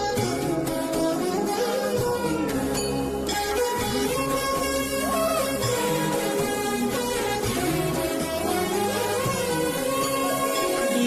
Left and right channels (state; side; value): identical; both; correlation 1.00